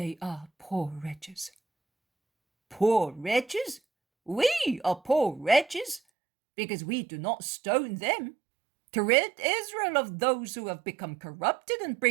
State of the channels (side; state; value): left; drops out; at 6.0 s